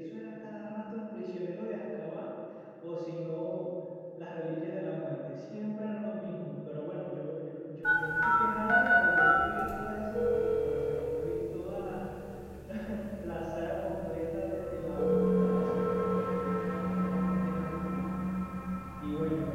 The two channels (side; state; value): both; identical; correlation 1.00